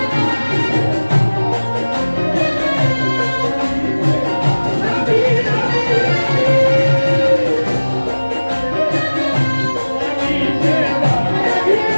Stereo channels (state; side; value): inverted; both; correlation -1.00